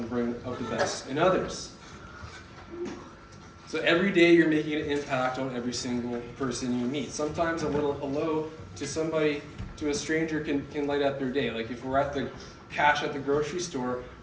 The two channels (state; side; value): identical; both; correlation 1.00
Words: bring out the best in others. So every day you're making an impact on every single person you meet. Sometimes a little hello to somebody, to a stranger can light up their day. Like if we're at the cash at the grocery store,